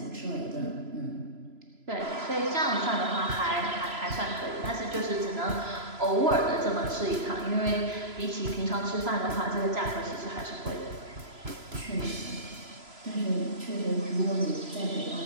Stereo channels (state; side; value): late; left; 3.0 ms